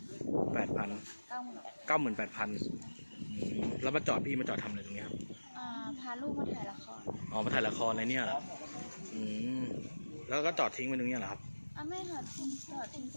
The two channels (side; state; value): both; inverted; correlation -1.00